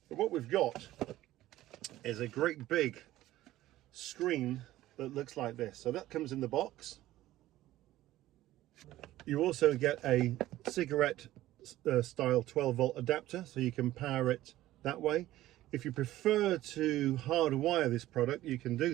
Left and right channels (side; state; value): left; quieter; 15.2 dB